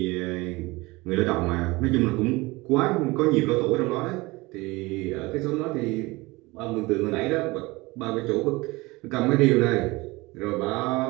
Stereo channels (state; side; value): quieter; left; 22.5 dB